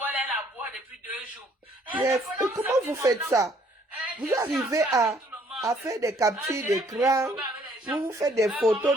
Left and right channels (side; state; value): both; normal; correlation 0.63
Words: la boîte depuis 2 jours. Comment vous faites ça? Vous arrivez à faire des captures d'écran, vous faites des photos,